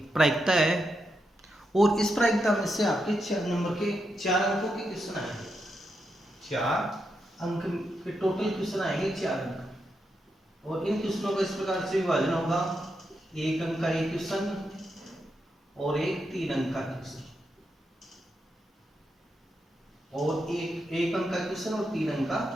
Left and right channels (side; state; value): both; normal; correlation 0.84